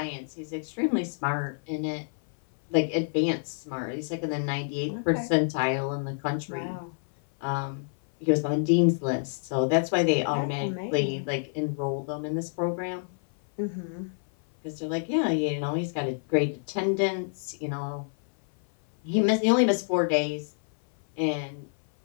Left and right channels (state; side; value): silent; right; 57 dB below the other